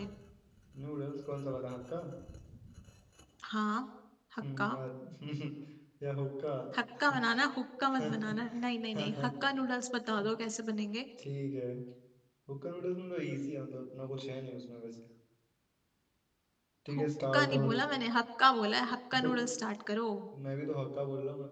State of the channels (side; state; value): both; identical; correlation 1.00